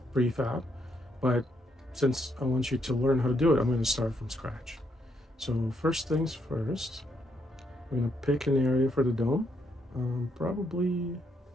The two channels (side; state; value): both; normal; correlation 0.76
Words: prefab, but since I want you to learn how to do it, I'm going to start from scratch. So first things first, we're going to pick an area for the dome, probably,